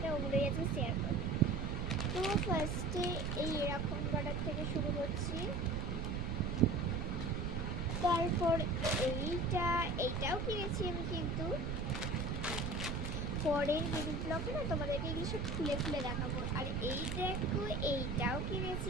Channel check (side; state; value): right; noise; rumble, 1 dB below the sound